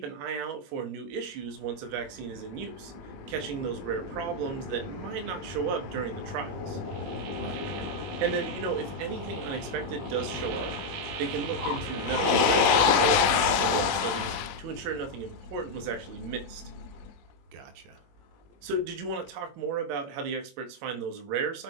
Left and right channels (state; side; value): late; left; 20 ms